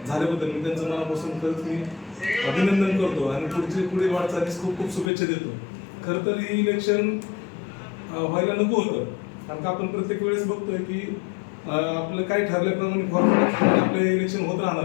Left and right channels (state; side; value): drops out; right; at 5.1 s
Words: मी त्यांचं मनापासून खरंच मी अभिनंदन करतो आणि पुढील वाटचालीस खूप खूप शुभेच्छा देतो. खरं तर हे इलेक्शन व्हायला नको होतं, कारण का आपण प्रत्येक वेळेस बघतोय की आपलं काही ठरल्याप्रमाणे फॉर्म्युला आपले इलेक्शन होत राहणार